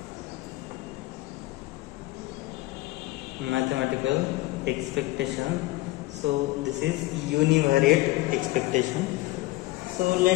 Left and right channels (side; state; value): right; quieter; 19.1 dB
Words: Mathematical expectation. So this is univariate expectation. So